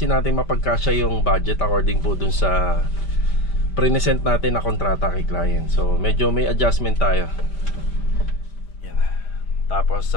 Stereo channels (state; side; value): late; right; 5.1 ms